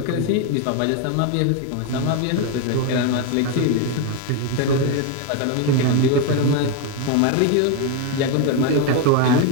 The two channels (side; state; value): both; different; correlation 0.02